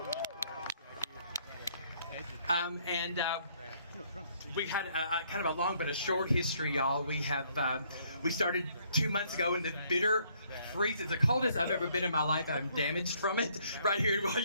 We've had kind of a long but a short history, y'all. We started 2 months ago in the bitter freeze. It's the coldest I've ever been in my life. I'm damaged from it right here in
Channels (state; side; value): inverted; both; correlation -0.67